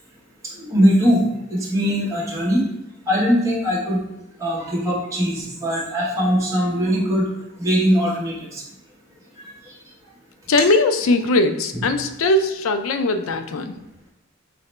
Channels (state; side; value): normal; both; correlation 0.48